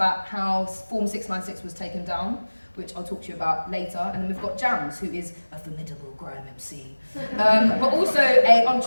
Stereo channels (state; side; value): inverted; both; correlation -1.00